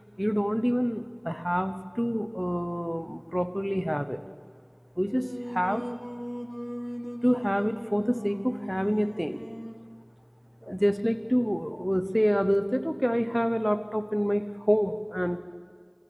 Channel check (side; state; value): both; identical; correlation 1.00